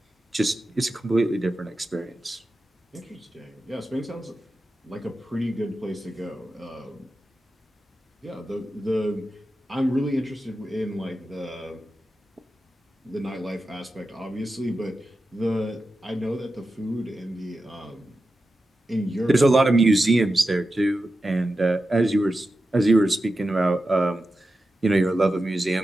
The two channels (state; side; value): normal; both; correlation 0.91